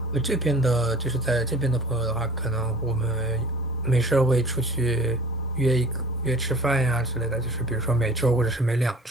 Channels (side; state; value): both; normal; correlation 0.46